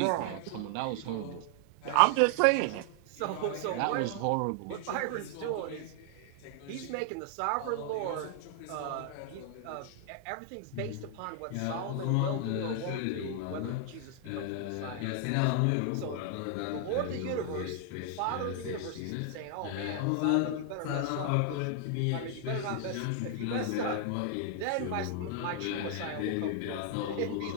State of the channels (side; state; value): both; different; correlation 0.00